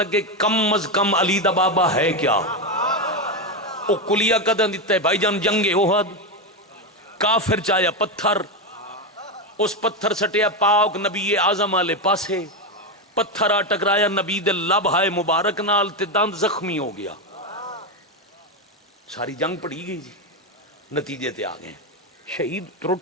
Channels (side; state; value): both; normal; correlation 0.10